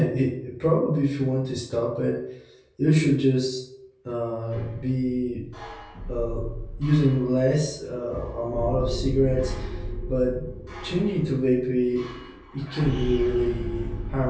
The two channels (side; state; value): both; identical; correlation 1.00